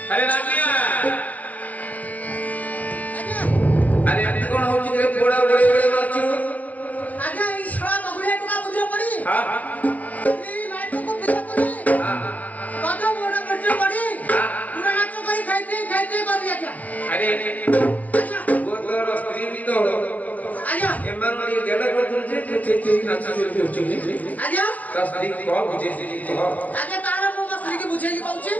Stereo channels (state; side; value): late; right; 0.077 ms